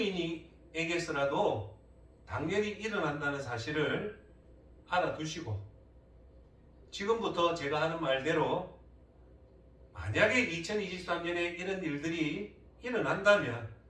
당연히 일어난다는 사실을 알아두시고 지금부터 제가 하는 말대로 만약에 2023년에 이런 일들이 일어난다면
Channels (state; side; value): identical; both; correlation 1.00